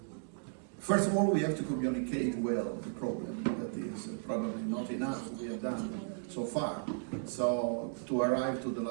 first of all, we have to communicate well the problem. That is probably not enough we have done so far. So to arrive to the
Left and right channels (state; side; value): silent; left; digital silence